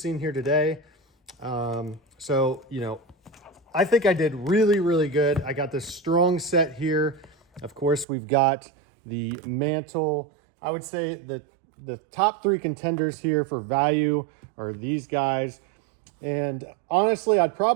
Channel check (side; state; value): left; drops out; at 8.1 s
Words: here today. I think I did really good. I got this strong set here. Of course, we've got the mantle. I would say that the top three contenders here for value are these guys. And honestly, I'd